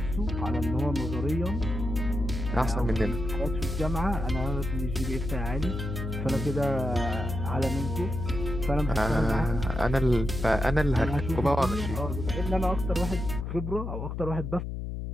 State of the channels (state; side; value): noise; left; hum, 5 dB below the sound